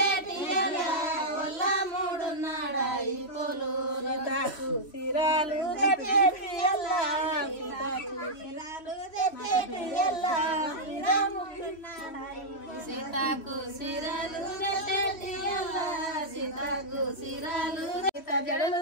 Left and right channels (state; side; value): late; right; 3.1 ms